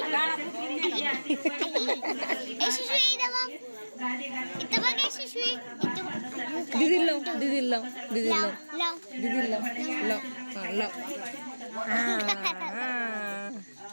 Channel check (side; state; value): both; inverted; correlation -1.00